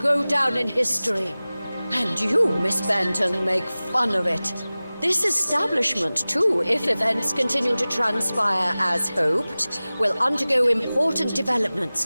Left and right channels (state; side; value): inverted; both; correlation -0.98